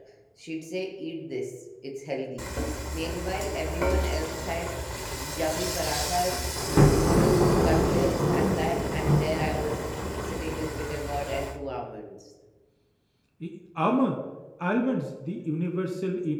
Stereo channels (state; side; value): identical; both; correlation 1.00